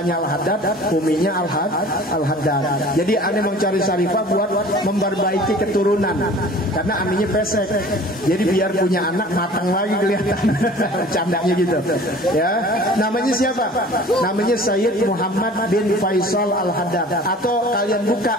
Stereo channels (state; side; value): normal; both; correlation 0.46